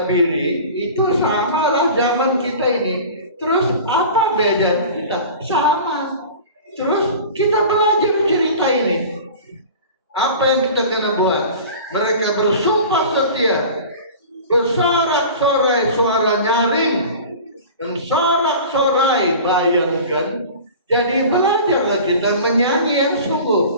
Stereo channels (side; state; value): both; inverted; correlation -0.38